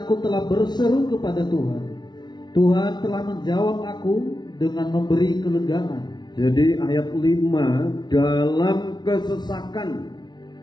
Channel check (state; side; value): late; right; 0.20 ms